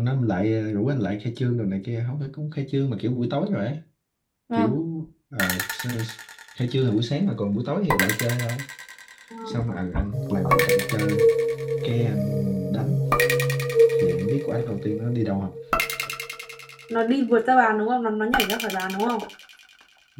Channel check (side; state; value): both; identical; correlation 1.00